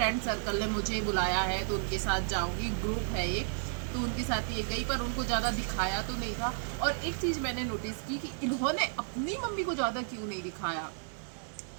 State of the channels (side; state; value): left; silent; digital silence